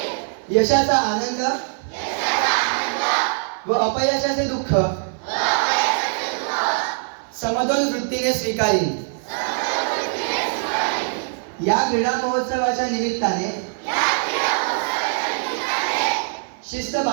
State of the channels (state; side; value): silent; left; 56 dB below the other